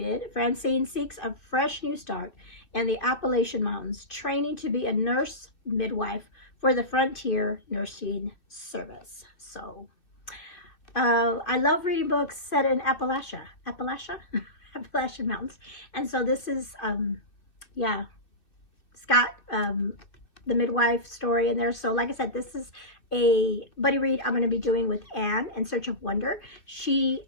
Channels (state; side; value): late; right; 2.5 ms